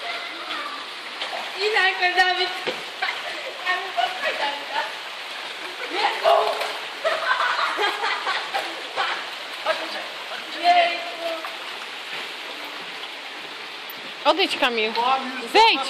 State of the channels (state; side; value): identical; both; correlation 1.00